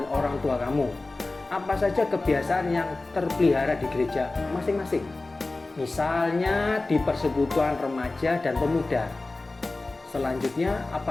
orang tua kamu. Apa saja kebiasaan yang terpelihara di gereja masing-masing? Misalnya di persekutuan remaja dan pemuda. Selanjutnya,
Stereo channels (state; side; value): quieter; right; 3.2 dB